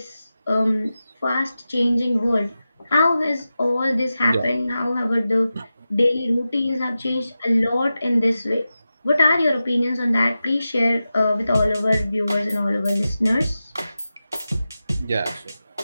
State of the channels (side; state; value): both; inverted; correlation -0.93